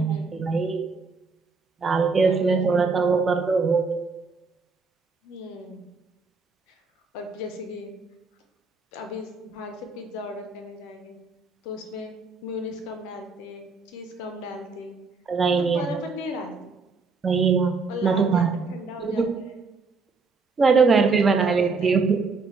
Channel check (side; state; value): left; quieter; 4.4 dB